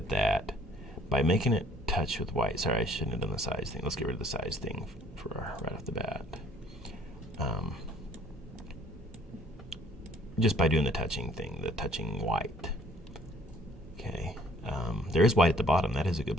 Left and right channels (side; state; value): both; normal; correlation 0.59